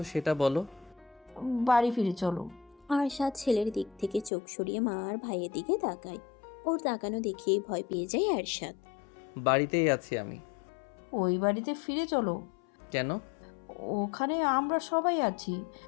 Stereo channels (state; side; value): drops out; right; at 4.3 s